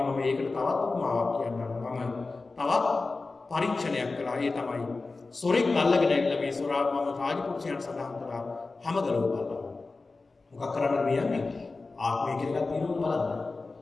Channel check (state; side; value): quieter; right; 3.7 dB